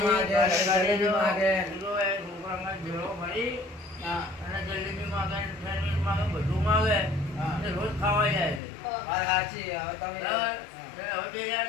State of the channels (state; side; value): drops out; right; at 8.6 s